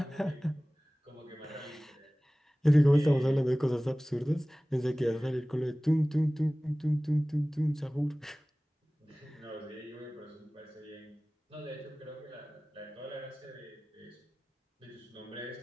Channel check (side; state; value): both; normal; correlation 0.98